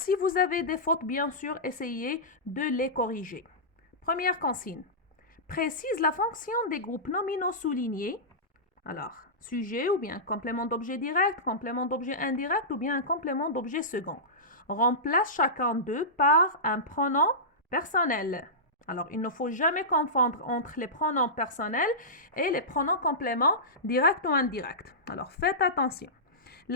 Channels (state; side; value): normal; both; correlation -0.16